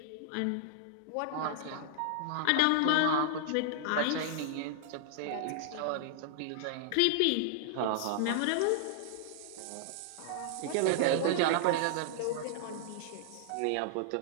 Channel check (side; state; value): both; different; correlation -0.01